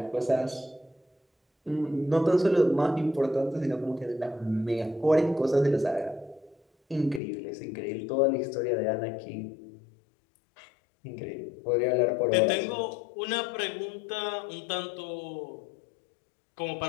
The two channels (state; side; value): drops out; right; at 7.2 s